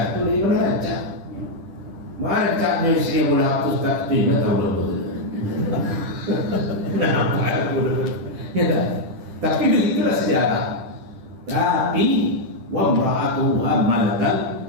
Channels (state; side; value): late; left; 10 ms